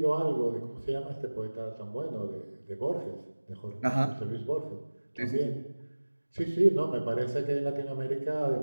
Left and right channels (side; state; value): both; inverted; correlation -1.00